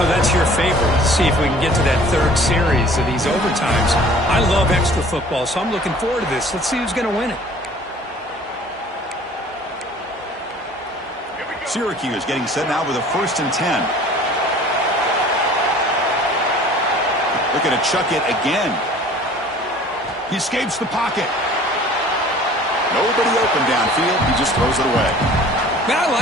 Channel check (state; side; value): normal; both; correlation 0.49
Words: that's your favorite. Let's see if we can get to that 3rd series of these overtimes. I love extra football, so I'm looking forward to this. Let's see who's going to win it. Syracuse getting set now with a 1st and 10. Looking to chuck it again. He escapes the pocket. Nobody open downfield. He just throws it away. Man, I